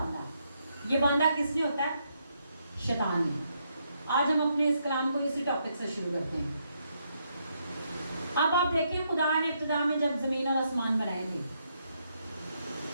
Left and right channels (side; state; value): both; inverted; correlation -0.77